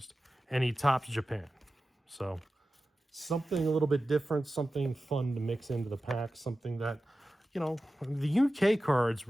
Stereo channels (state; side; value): normal; both; correlation 0.94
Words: And he tops Japan, so something a little bit different, something fun to mix into the pack, something that, you know, the UK cards